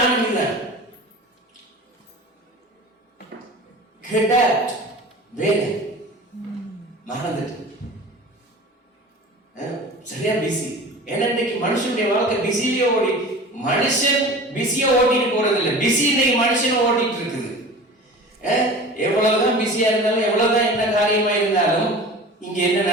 இதுதான். வேலை மறந்துட்டு சரியா பிஸி. ஏன்னா இன்னைக்கு மனுஷனுடைய வாழ்க்கை பிஸிலேயே ஓடி, மனுஷன் பிஸியா ஓட்டிட்டு போறது இல்லை, பிஸி இன்னைக்கு மனுஷன் ஓட்டிட்டு இருக்குது. எவ்வளவுதான் பிஸியா இருந்தாலும், எவ்வளவுதான் என்ன காரியமா இருந்தாலும், இங்க என்ன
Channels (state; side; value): normal; both; correlation 0.38